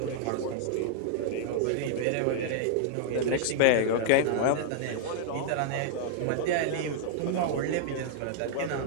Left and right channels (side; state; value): both; different; correlation -0.01